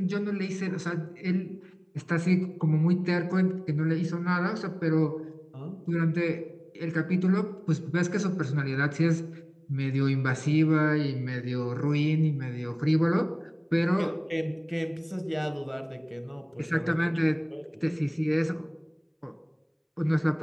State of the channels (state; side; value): identical; both; correlation 1.00